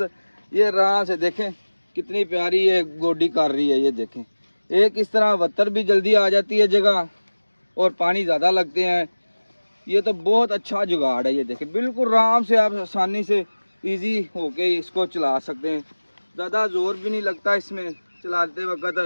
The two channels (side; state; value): both; inverted; correlation -1.00